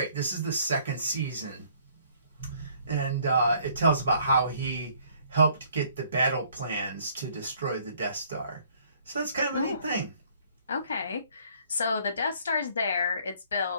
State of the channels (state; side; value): inverted; both; correlation -0.61